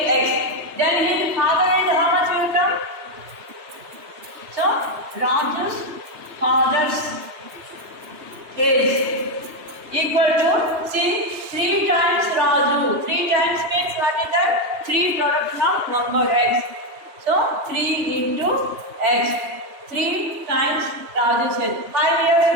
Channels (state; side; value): late; left; 3.1 ms